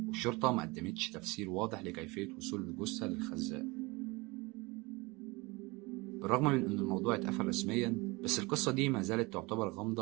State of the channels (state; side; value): quieter; left; 24.8 dB